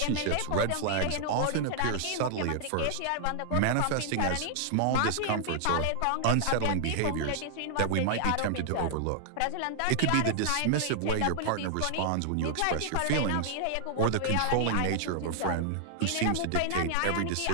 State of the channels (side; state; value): both; different; correlation 0.00